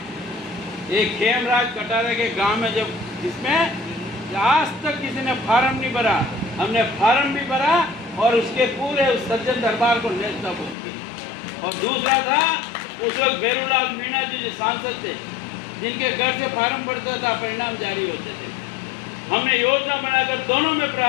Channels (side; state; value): right; drops out; at 10.8 s